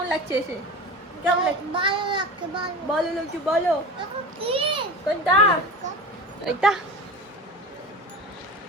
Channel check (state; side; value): normal; both; correlation 0.31